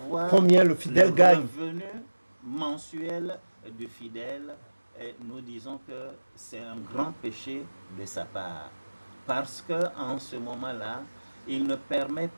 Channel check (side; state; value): both; inverted; correlation -1.00